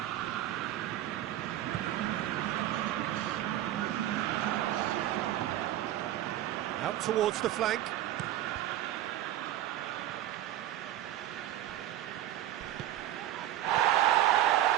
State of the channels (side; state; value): left; quieter; 13.2 dB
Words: Out towards the flank.